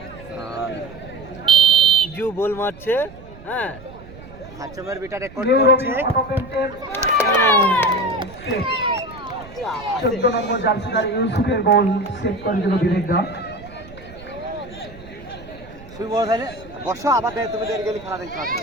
জু বল মারছে। হ্যাঁ হাচমের বিটা রেকর্ড করছে 14 নম্বর জার্সিদার ইউসুফের বল সেভ করে দিল বিবেকদা। শুই বল তাহলে বসো আবার তুমি দেরি গেলে খেলা দেখতে পাবে।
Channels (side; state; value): right; noise; rumble, 18 dB below the sound